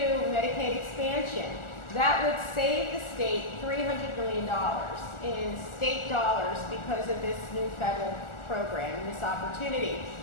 Medicaid expansion, that would save the state $300 million in state dollars because of this new federal program, this opportunity.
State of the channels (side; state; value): right; late; 1.4 ms